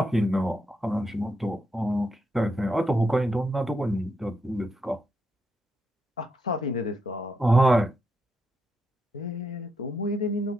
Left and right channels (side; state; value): both; normal; correlation 0.82